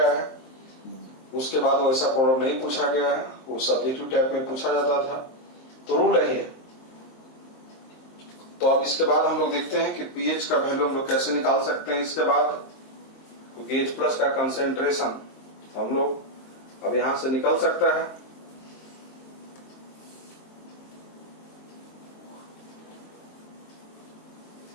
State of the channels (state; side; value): late; right; 23 ms